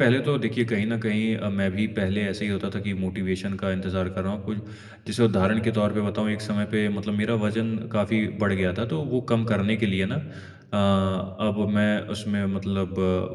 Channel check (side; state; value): both; identical; correlation 1.00